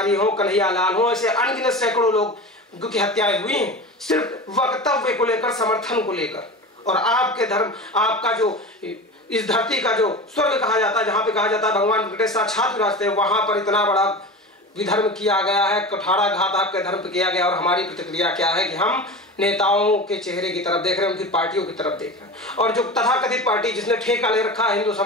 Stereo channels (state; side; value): normal; both; correlation 0.30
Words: हो, कन्हैया लाल हो, ऐसे अनगिनत सैकड़ों लोग की हत्याएं हुई हैं, सिर्फ वक्तव्य को लेकर, समर्थन को लेकर। और आपके धर्म, आपका जो इस धरती का जो स्वर्ग कहा जाता है, जहां पे कहा जाता है भगवान वेंकटेश साक्षात विराजते हैं, वहां पर इतना बड़ा विधर्म किया गया है, कुठाराघात आपके धर्म पे किया गया। और हमारी प्रतिक्रिया क्या है कि हम नेताओं के चेहरे की तरफ देख रहे हैं, उनकी पार्टियों की तरफ देख रहे हैं। और जो तथाकथित पार्टी जिसने ठेका ले रखा है हिंदू